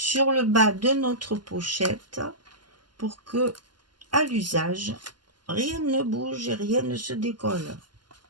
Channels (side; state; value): left; late; 0.71 ms